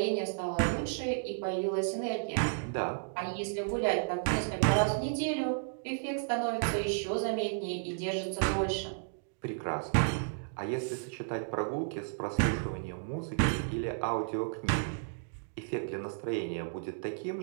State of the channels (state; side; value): silent; left; digital silence